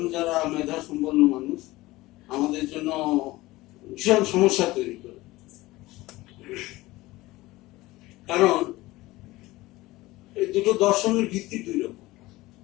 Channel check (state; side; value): quieter; right; 19.0 dB